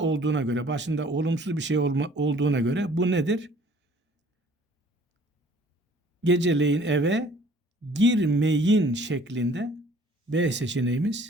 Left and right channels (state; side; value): normal; both; correlation 0.55